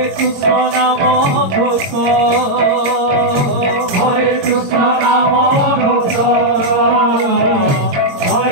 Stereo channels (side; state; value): left; late; 22 ms